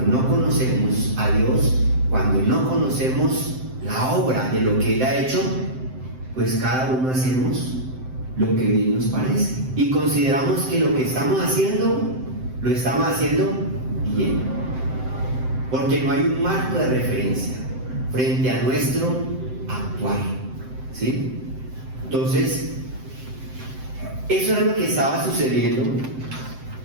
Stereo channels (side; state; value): left; late; 7.7 ms